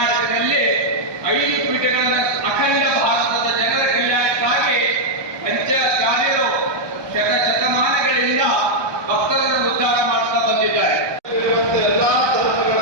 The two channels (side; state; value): left; late; 1.2 ms